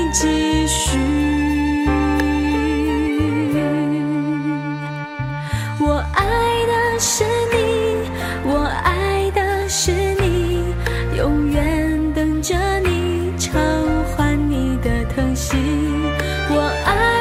继续。我爱的是你，我爱的是你，永远等着你偿还你的疼惜。我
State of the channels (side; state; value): both; identical; correlation 1.00